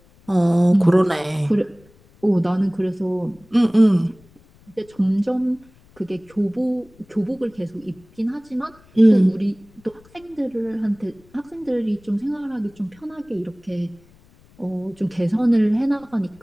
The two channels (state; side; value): noise; left; rumble, 28 dB below the sound